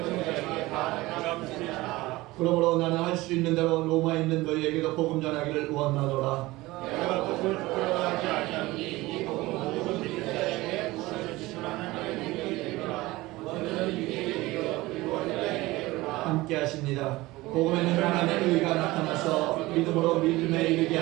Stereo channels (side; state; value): left; quieter; 19.7 dB